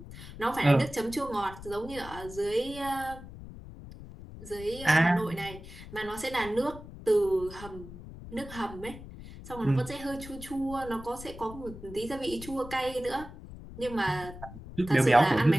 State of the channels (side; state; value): left; noise; rumble, 14 dB below the sound